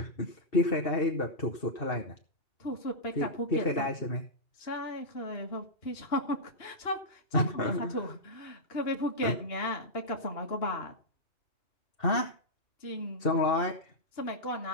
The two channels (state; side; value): late; right; 2.9 ms